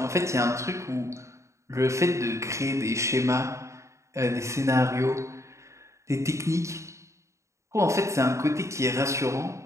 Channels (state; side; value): late; left; 0.14 ms